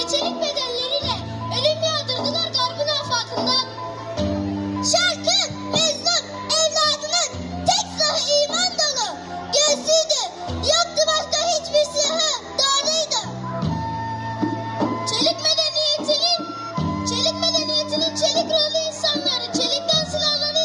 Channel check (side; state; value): both; identical; correlation 1.00